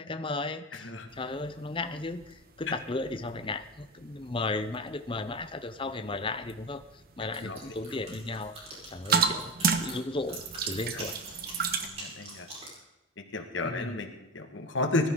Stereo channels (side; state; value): both; normal; correlation 0.22